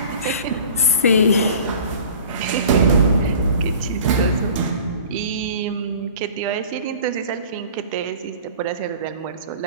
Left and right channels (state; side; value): inverted; both; correlation -0.43